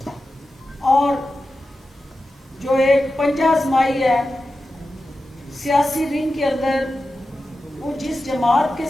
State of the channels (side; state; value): both; normal; correlation 0.92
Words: اور جو ایک پنجہ آزمائی ہے سیاسی رنگ کے اندر وہ جس جماعت کے